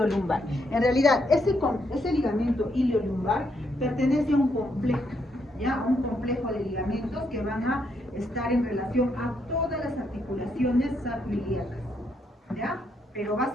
En realidad, ese ligamento iliolumbar pertenece a un complejo, ¿ya? A un complejo de ligamentos que van a estar en relación a todas las articulaciones sacroiliacas, ¿ya? Pero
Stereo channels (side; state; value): both; normal; correlation 0.76